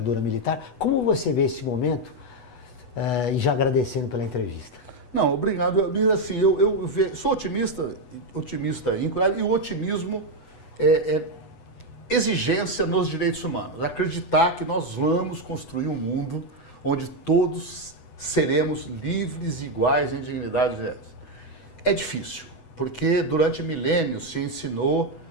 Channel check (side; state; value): right; late; 8.1 ms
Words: militar. Como você vê esse momento? E já agradecendo pela entrevista. Não, obrigado. Assim, eu sou otimista íntegro, e o otimismo é exigência nos direitos humanos. Acreditar que nós vamos construir um mundo onde todos seremos livres e iguais em dignidade. É difícil, porque durante milênios se ensinou